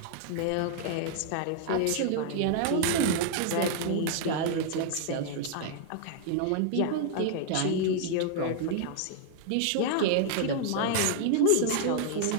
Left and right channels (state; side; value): different; both; correlation 0.00